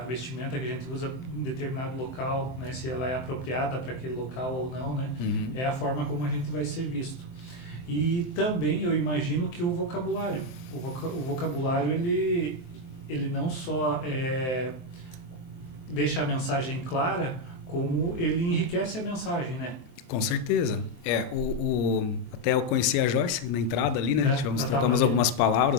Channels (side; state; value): right; late; 23 ms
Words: vestimenta que a gente usa em determinado local, né? Se ela é apropriada para aquele local ou não, né? É a forma como a gente vai ser visto. E também eu imagino que o vocabulário, o vocabulário ele não só deixa a mensagem clara, como ele enriquece a mensagem, né? Com certeza. Até eu conheci a Joyce na entrada ali, né? Trocamos algumas